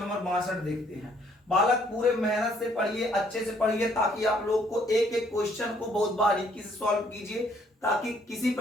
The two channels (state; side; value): normal; both; correlation 0.65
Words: 62 देखते हैं। बालक पूरे मेहनत से पढ़िए, अच्छे से पढ़िए, ताकि आप लोग को एक एक क्वेश्चन को बहुत बारीकी से सॉल्व कीजिए, ताकि किसी